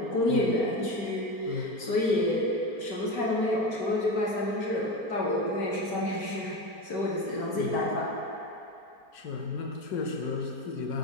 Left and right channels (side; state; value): right; late; 4.4 ms